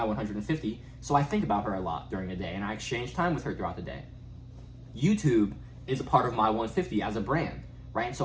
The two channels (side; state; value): both; identical; correlation 1.00